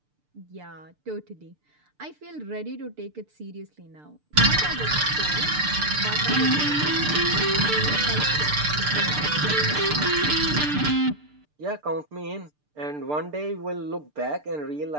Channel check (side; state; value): left; late; 6.7 ms